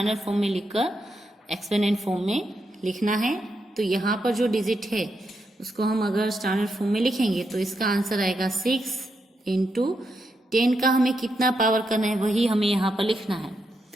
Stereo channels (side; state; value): both; normal; correlation 0.83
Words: फॉर्म में लिखकर एक्सपेंडेड फॉर्म में लिखना है। तो यहाँ पर जो डिजिट है उसको हम अगर स्टैंडर्ड फॉर्म में लिखेंगे तो इसका आंसर आएगा 6 इंटू 10 का हमें कितना पावर करना है वही हमें यहाँ पर लिखना है।